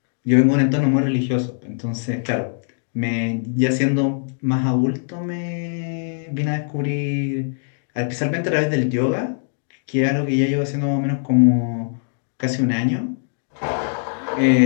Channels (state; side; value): silent; right; digital silence